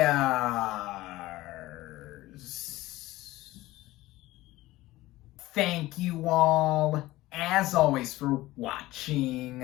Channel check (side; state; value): right; quieter; 17.7 dB